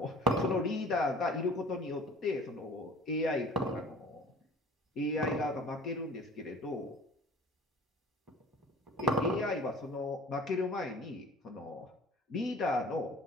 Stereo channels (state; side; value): normal; both; correlation 0.46